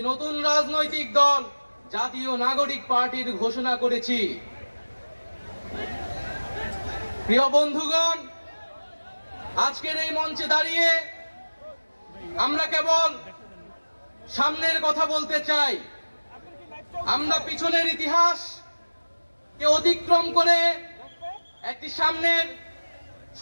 নতুন রাজনৈতিক দল জাতীয় নাগরিক পার্টির ঘোষণা করেছি। প্রিয় বন্ধুগণ, আজকের এই মঞ্চে দাঁড়িয়ে আমরা কেবল সামনের কথা বলতে চাই। আমরা পিছনের ইতিহাসকে অতিক্রম করে একটি সামনের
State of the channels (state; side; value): inverted; both; correlation -1.00